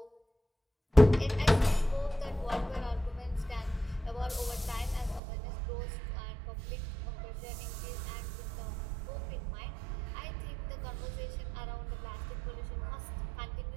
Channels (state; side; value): drops out; left; at 5.2 s